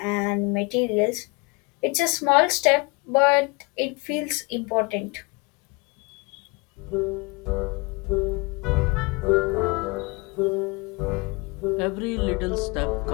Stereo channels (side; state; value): right; quieter; 28.2 dB